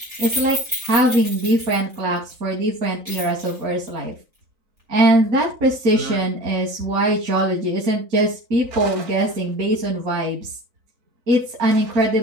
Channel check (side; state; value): left; late; 3.9 ms